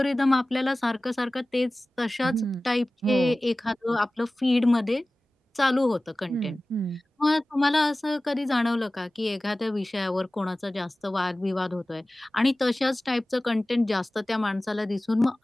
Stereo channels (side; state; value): both; normal; correlation 0.97